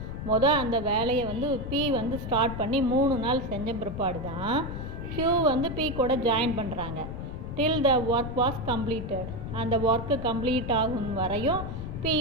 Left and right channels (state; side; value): noise; left; rumble, 7 dB below the sound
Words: அந்த வேலையை P ஸ்டார்ட் பண்ணி 3 நாள் செஞ்ச பிற்பாடு தான் Q P கூட ஜாயின் பண்ணுறாங்க. Till the work was completed. அந்த ஒர்க்கு கம்ப்ளீட் ஆகும் வரையும்